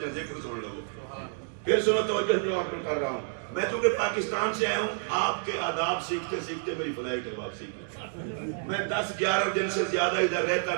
ذکر سن لو۔ پھر سنو توجہ جو آپ میں کر رہا ہوں، میں چونکہ پاکستان سے آیا ہوں، آپ کے آداب سیکھتے سیکھتے میری فلائٹ ہے واپسی کی، میں 10-11 دن سے زیادہ ادھر رہتا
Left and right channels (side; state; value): left; silent; digital silence